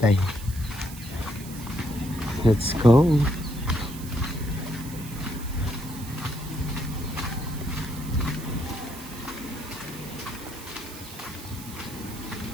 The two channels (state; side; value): noise; right; hiss, 14 dB below the sound